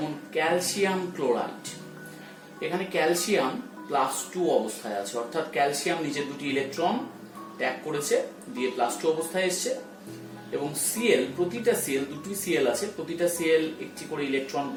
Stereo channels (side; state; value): both; identical; correlation 1.00